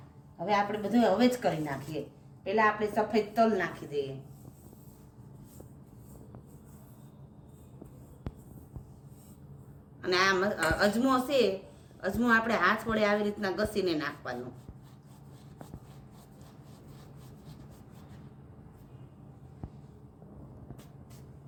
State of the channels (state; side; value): identical; both; correlation 1.00